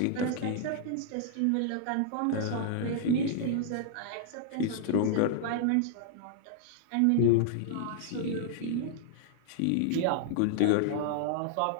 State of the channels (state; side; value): different; both; correlation -0.01